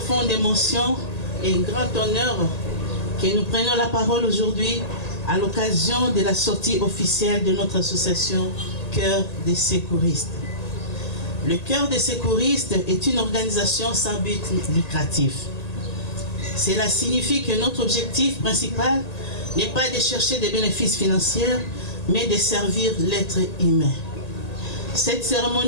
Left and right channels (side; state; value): right; late; 1.8 ms